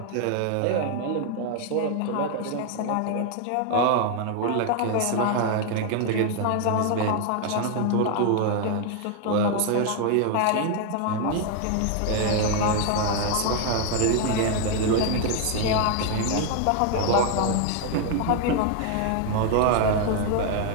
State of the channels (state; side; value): different; both; correlation 0.01